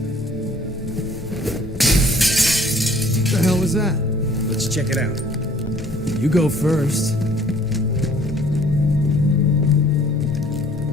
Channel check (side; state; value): both; normal; correlation 0.56